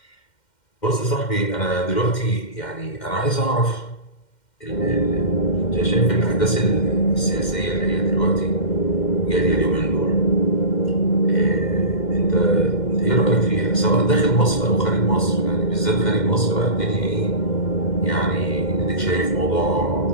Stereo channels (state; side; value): late; right; 2.1 ms